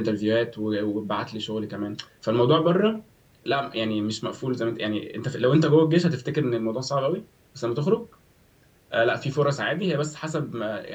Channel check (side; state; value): both; identical; correlation 1.00